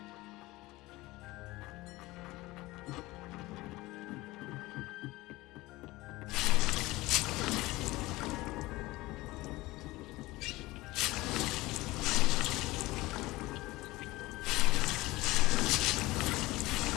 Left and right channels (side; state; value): right; quieter; 19.8 dB